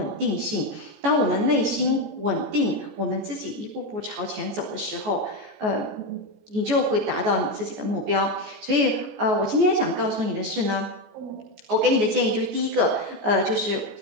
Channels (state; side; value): late; left; 14 ms